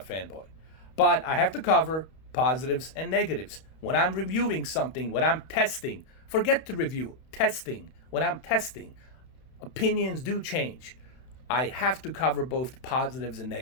But I have to cover positives and negatives. When I'm reviewing something, when I'm testing, forget the review, testing. When I'm testing, opinions do change. I have to cover both positives and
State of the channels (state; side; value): late; right; 31 ms